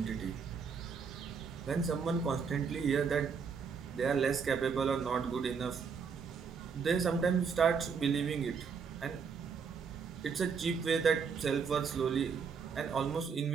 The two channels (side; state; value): left; quieter; 5.9 dB